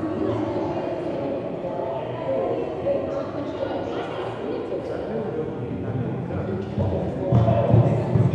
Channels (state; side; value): identical; both; correlation 1.00